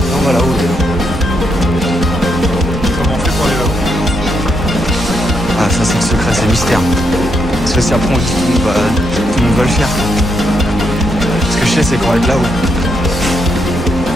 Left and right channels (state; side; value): normal; both; correlation 0.78